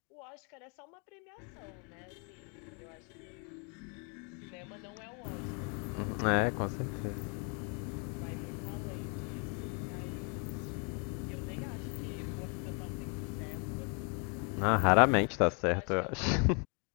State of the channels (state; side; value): quieter; right; 36.0 dB